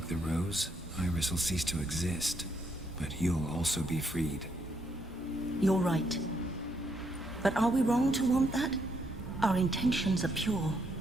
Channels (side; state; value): both; normal; correlation 0.75